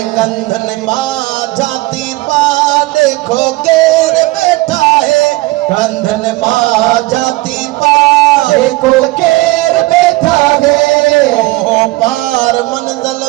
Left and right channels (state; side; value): quieter; left; 20.7 dB